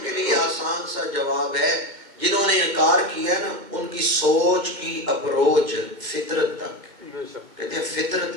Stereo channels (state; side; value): late; left; 2.2 ms